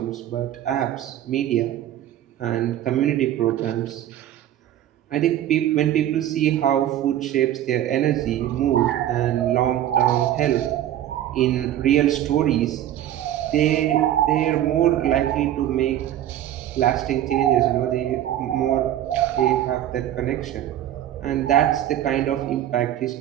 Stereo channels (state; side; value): quieter; left; 12.0 dB